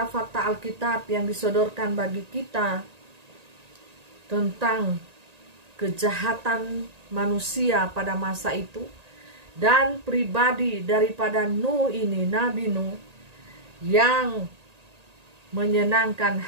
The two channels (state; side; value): late; left; 1.8 ms